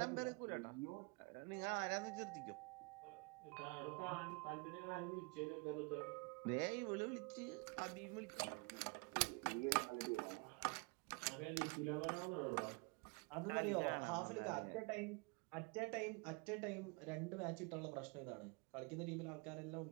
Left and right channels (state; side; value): quieter; left; 30.8 dB